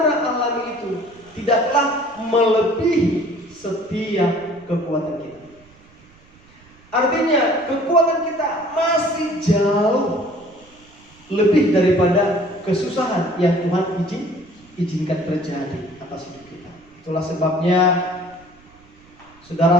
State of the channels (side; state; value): right; noise; rumble, 28 dB below the sound